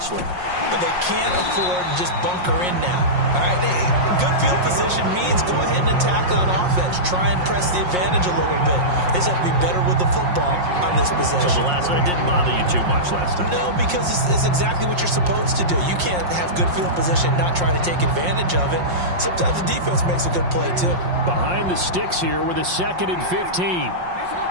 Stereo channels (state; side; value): late; left; 5.6 ms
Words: But they can't afford to just bunker in now. All right, good field position means go ahead and attack on offense. Try and press the advantage a little bit. They just have to be better with the football on this possession. So the last one didn't bother you too much last time? No, because it's exactly what you're supposed to do. You can't have good field position, not try to take advantage of it. Sometimes the defense makes a good play, too. Behind the sticks here with a 2nd and 15.